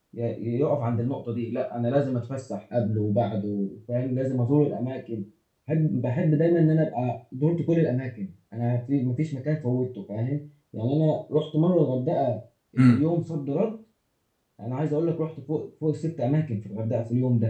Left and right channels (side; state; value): both; identical; correlation 1.00